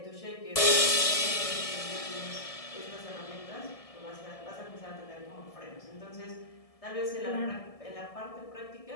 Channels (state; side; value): late; right; 1.7 ms